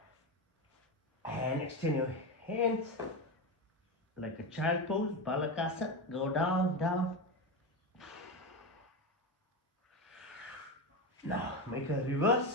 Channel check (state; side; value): normal; both; correlation 0.17